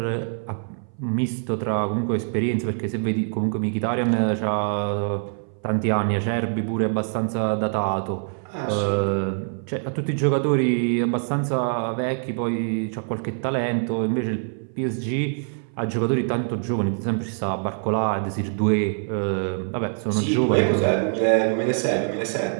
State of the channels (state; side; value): silent; left; 59 dB below the other